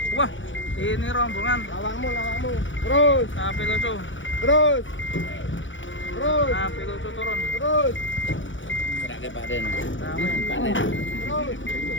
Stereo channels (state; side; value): late; right; 0.56 ms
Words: Wah, ini rombongan. Lawangmu. Terus. Sapi lucu. Terus. Sapi lucu turun. Terus. Serake Pak Den.